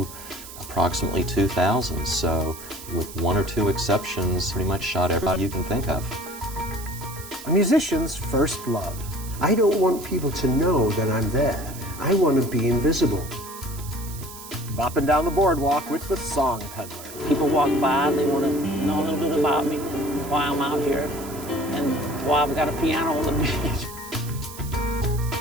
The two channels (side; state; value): right; noise; hiss, 14 dB below the sound